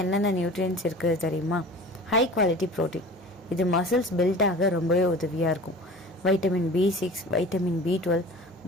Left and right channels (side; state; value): both; normal; correlation 0.40